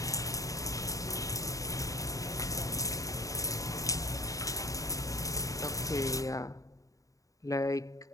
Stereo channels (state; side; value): late; right; 0.16 ms